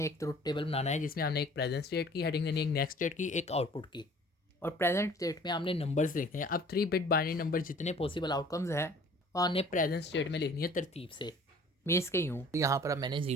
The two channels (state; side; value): normal; both; correlation 0.50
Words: एक ट्रुथ टेबल बनाना है, जिसमें हमने एक प्रेजेंट स्टेट की हेडिंग देनी है, एक नेक्स्ट स्टेट की, एक आउटपुट की, और प्रेजेंट स्टेट में हमने नंबर्स लिखने हैं। अब 3 बिट बाइनरी नंबर जितने पॉसिबल आउटकम्स हैं और हमने प्रेजेंट स्टेट में लिखनी है तरतीब से। मैं इसके यूँ तो यहाँ पर अब मैंने